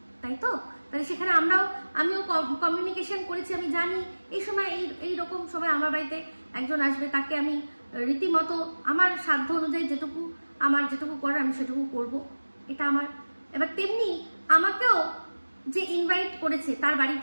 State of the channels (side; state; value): both; inverted; correlation -1.00